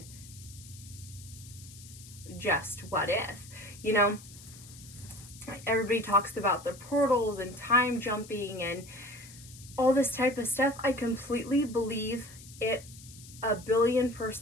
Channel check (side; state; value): left; noise; hiss, 18 dB below the sound